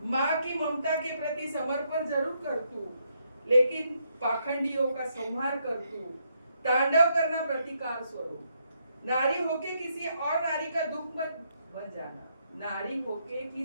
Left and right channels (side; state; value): both; inverted; correlation -0.76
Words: माँ की ममता के प्रति समर्पण जरूर कर तू, लेकिन पाखंडियों का संहार कर तू. तांडव करना प्रतिकार स्वरूप. नारी होके किसी और नारी का दुख मत बन जाना, नारी होके